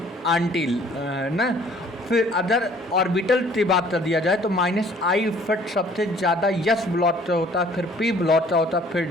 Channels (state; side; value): normal; both; correlation 0.56